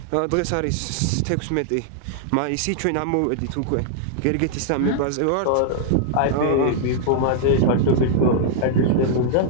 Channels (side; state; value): both; different; correlation -0.01